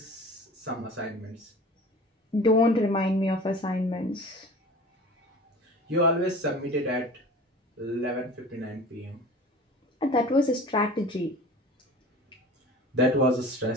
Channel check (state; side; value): normal; both; correlation 0.40